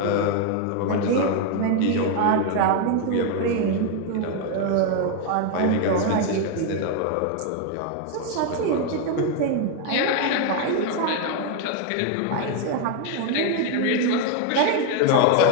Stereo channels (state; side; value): different; both; correlation 0.01